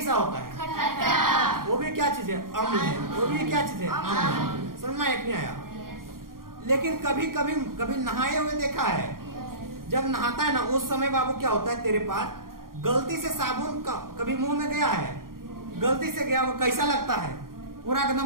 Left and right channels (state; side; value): late; left; 0.92 ms